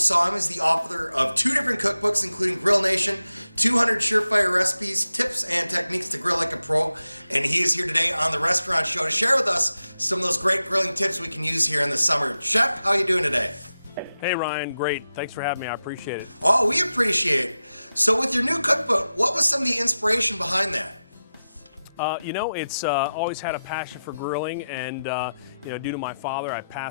him as the author of 2 different cookbooks, including Grill Nation, 200 Surefire Recipes, Tips and Techniques to Grill Like a Pro. And he is here today on the Restaurant Show to share with us some of those great grilling tips we can use here in the summer. Chef, how are you doing today? Hey Ryan, great. Thanks for having me. I appreciate it. Oh, we appreciate it. So with your new cookbook, what was some of the inspiration behind that? It's always had a passion for grilling, and due to my father, I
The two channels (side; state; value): both; inverted; correlation -0.92